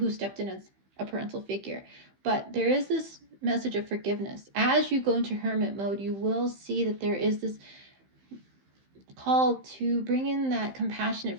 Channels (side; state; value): left; late; 15 ms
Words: stepped in as a parental figure. But there is this message of forgiveness. As you go into hermit mode, you will see that there is this call to bring in that compassionate,